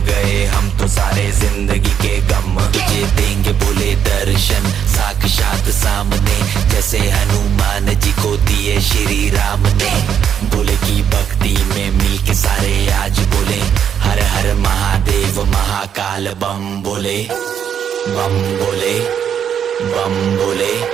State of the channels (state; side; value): quieter; left; 8.5 dB